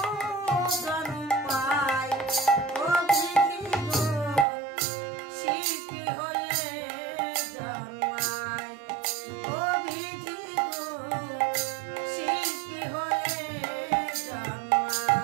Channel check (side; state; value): left; drops out; at 4.5 s